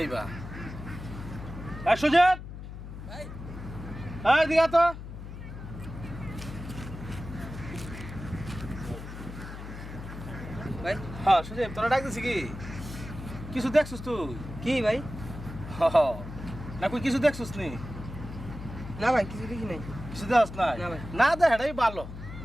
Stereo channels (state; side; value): noise; left; hum, 11 dB below the sound